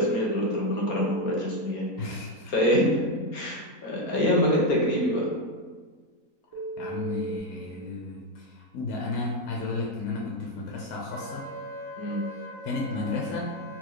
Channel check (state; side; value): late; right; 4.3 ms